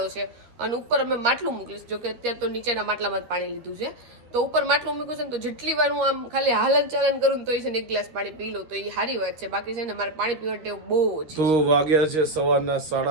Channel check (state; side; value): late; left; 13 ms